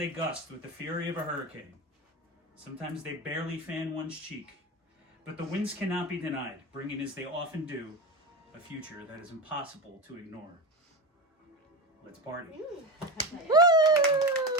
gust with the fury of a hurricane. Sometimes they barely fan one's cheek. But the winds cannot be denied, bringing, as they often do, a future that is impossible to ignore. Let's party. Woo! Well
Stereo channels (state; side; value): normal; both; correlation 0.23